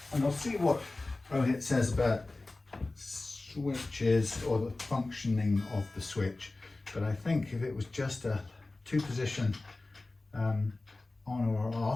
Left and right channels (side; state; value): right; quieter; 3.1 dB